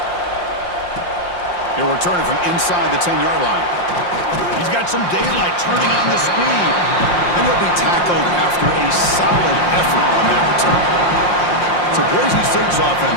He'll return it from inside the 10-yard line. He's got some daylight turning on the speed, and he'll be tackled after a solid effort on that return. So Boise State's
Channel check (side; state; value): right; late; 5.7 ms